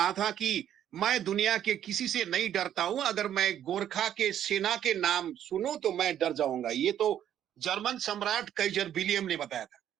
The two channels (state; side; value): quieter; left; 10.5 dB